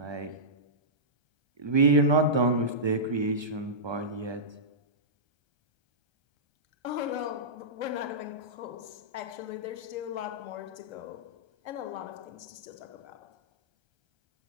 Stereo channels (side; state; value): left; late; 1.3 ms